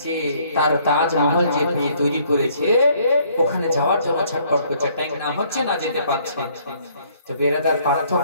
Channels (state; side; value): inverted; both; correlation -0.63